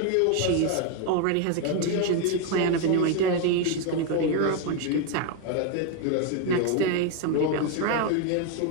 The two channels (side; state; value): both; different; correlation 0.01